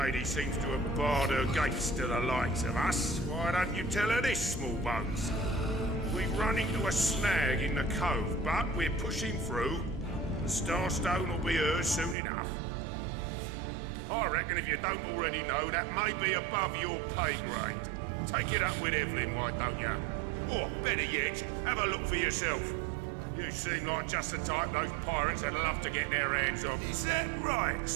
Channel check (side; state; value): left; drops out; at 12.2 s